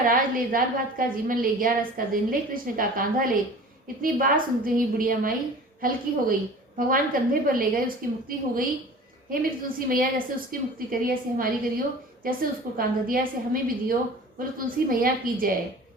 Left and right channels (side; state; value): both; normal; correlation 0.42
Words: ले, दाल भात का जीवन ले, 11 का दिन ले, कृष्ण का कांधा ले, इतनी बात सुनते ही बुढ़िया माई हल्की हो गई। भगवान कंधे पर ले गए, उसकी मुक्ति हो गई। हे मेरी तुलसी मैया, जैसे उसकी मुक्ति करी ऐसे हमारी करियो, जैसे उसको कांधा दिया ऐसे हमें भी दियो। बोलो तुलसी मैया की जय,